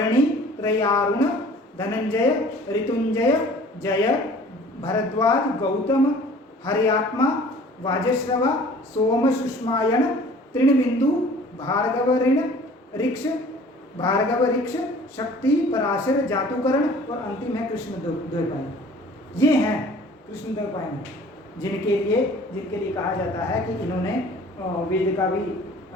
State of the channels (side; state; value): both; normal; correlation 0.49